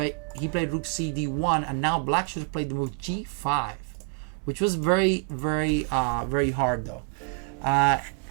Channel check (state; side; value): quieter; left; 36.6 dB